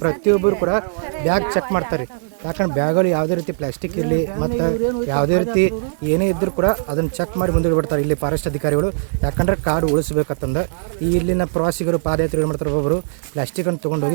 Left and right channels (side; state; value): left; silent; 61 dB below the other